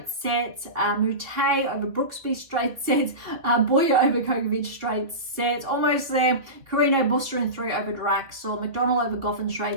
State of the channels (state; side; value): late; left; 2.5 ms